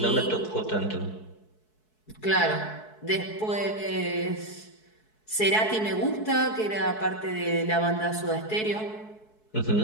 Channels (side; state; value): right; late; 4.6 ms